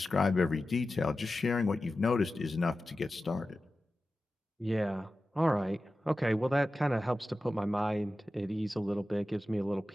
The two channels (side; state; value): both; normal; correlation 0.94